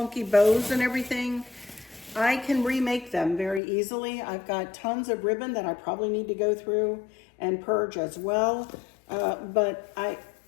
bows and everything, I can remake them very easily. I've got tons of ribbon that I probably need to go through and purge as well. But I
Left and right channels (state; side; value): drops out; right; at 3.6 s